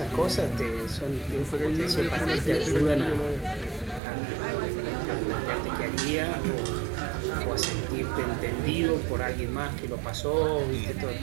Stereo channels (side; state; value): left; drops out; at 4.0 s